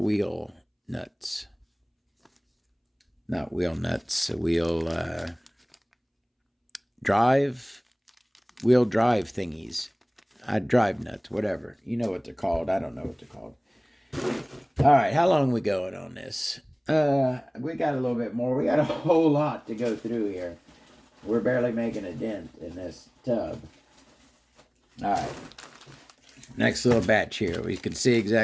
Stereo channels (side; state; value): both; identical; correlation 1.00